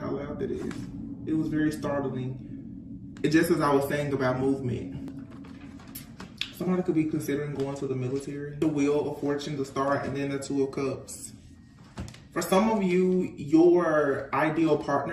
loud that is. It was very startling. Just as I was saying about movement. Somebody could be considering going to the military. The Wheel of Fortune, the Star, and then the Two of Cups. For some of you, your ideal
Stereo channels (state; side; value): identical; both; correlation 1.00